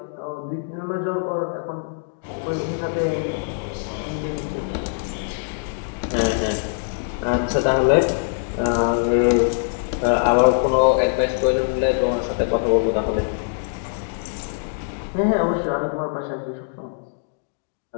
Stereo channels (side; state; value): right; silent; digital silence